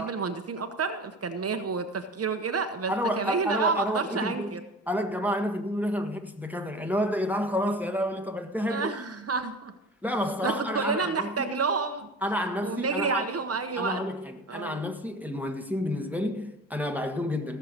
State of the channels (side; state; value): both; normal; correlation 0.37